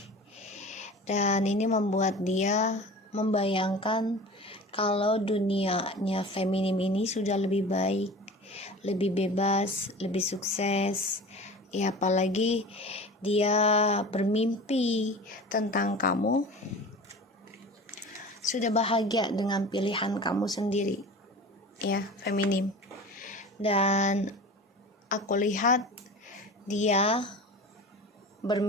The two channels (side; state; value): both; normal; correlation 0.37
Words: Dan ini membuat dia membayangkan kalau dunianya feminim ini sudah lebih baik, lebih bebas, lebih sukses ya, apalagi dia bermimpi tentang kamu sudah bahagia dengan pilihan kamu sendiri ya, feminim. Dan aku lihat dia